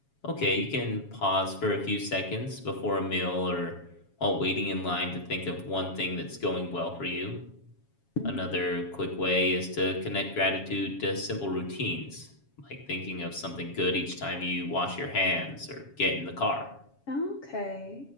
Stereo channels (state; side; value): late; right; 7.2 ms